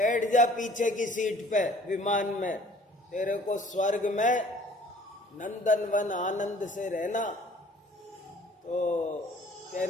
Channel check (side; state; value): both; normal; correlation 0.53